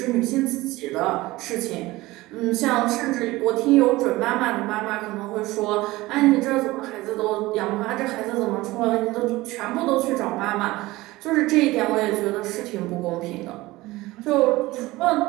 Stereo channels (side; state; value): left; quieter; 19.3 dB